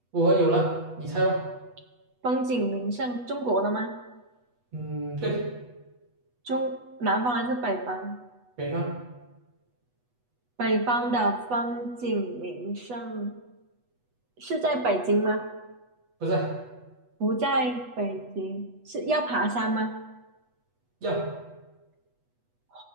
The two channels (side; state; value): left; late; 8.2 ms